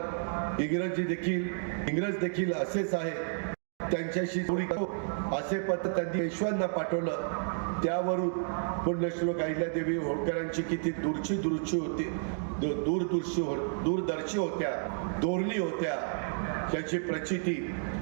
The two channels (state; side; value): silent; left; digital silence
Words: इंग्रज देखील असेच आहे, त्यांच्याशी जोडी असे पत्र त्यांनी पेशव्यांना पाठवलं। त्यावरून पुण्यश्लोक अहिल्यादेवी होळकरांची किती दूरदर्शी होत्या, धोरणी होत्या याची प्रचिती